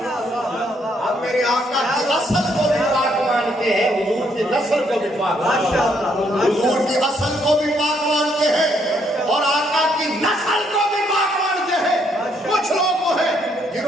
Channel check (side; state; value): both; normal; correlation 0.71